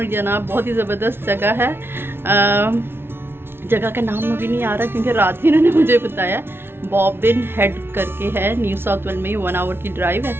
जनाब बहुत ही ज़बरदस्त जगह है। जगह का नाम अभी नहीं आ रहा क्योंकि रात ही इन्होंने मुझे बताया। बॉबिन हेड करके है, न्यू साउथ वेल्स में, 1 आवर की ड्राइव है।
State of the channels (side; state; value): left; late; 0.11 ms